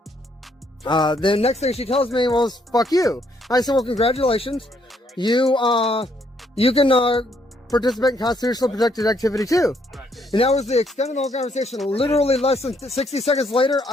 the next thing she tells me was, fuck you. I said, well, congratulations. You can, participate in constitutionally protected activity too. And that was the extent of the whole conversation. Literally less than 60 seconds later,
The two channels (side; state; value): both; normal; correlation 0.71